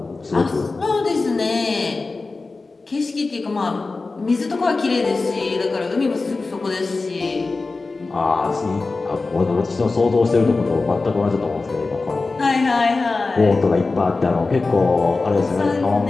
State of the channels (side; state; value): right; quieter; 3.7 dB